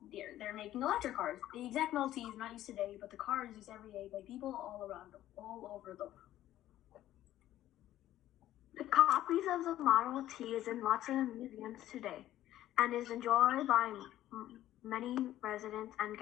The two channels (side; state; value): right; quieter; 13.4 dB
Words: they're making electric cars. The exact Model T is not used today, but the car is used every day by people all over the world. The copies of the Model T is in lots of museums today, and is enjoyed by many residents and